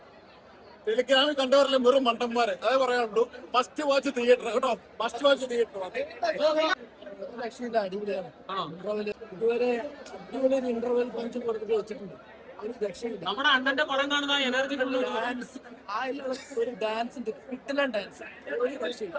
ടെലിഗ്രാമിൽ കണ്ടവരെല്ലാം വെറും മണ്ടന്മാരെ അതേ പറയാനുള്ളൂ. ഫസ്റ്റ് വാച്ച് തിയേറ്റർ കേട്ടോ, ഫസ്റ്റ് വാച്ച് തിയേറ്റർ. രക്ഷയില്ല, അടിപൊളിയാണ്. ഇന്റർവെൽ ഇതുവരെ അടിപൊളി ഒരു ഇന്റർവെൽ പഞ്ച് കൊടുത്തിട്ട് വെച്ചിട്ടുണ്ട്. ഒരു രക്ഷയില്ല. നമ്മുടെ അണ്ണന്റെ പടം കാണുന്ന എനർജി ഡാൻസ് ഒരു ഡാൻസ് ഉണ്ട്, കിട്ടില്ല ഡാൻസ്, ഒരു രക്ഷയില്ല.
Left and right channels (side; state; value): both; identical; correlation 1.00